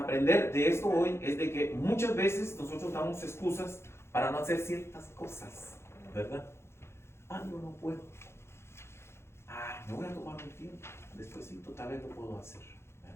de esto hoy es de que muchas veces nosotros damos excusas para no hacer ciertas cosas, ¿verdad? Yo no puedo. Me voy a tomar un tiempo. Despuésito tal vez lo puedo hacer,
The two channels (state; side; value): late; right; 0.12 ms